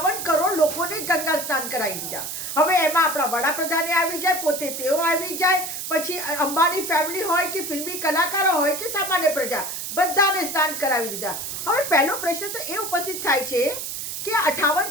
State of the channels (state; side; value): noise; right; hiss, 6 dB below the sound